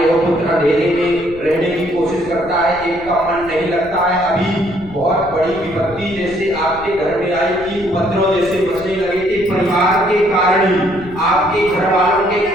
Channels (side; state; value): left; noise; rumble, 19 dB below the sound